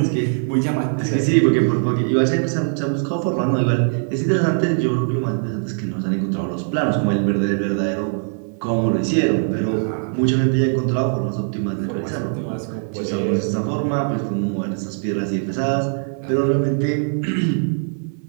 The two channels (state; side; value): silent; left; 56 dB below the other